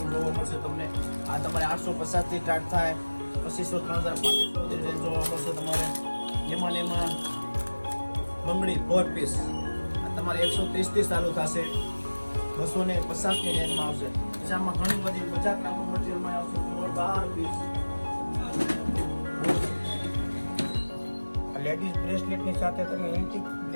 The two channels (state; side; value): inverted; both; correlation -1.00